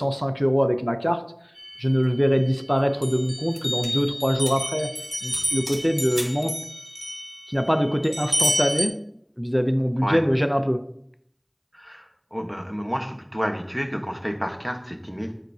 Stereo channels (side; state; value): both; identical; correlation 1.00